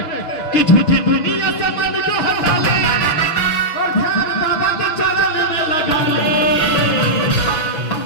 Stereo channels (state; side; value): late; right; 6.2 ms